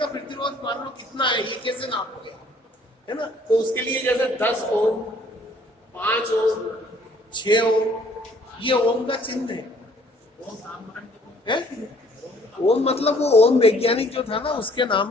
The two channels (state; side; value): normal; both; correlation 0.59